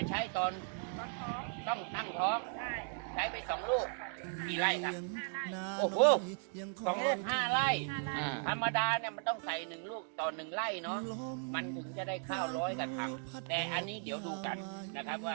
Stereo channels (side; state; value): left; silent; 53 dB below the other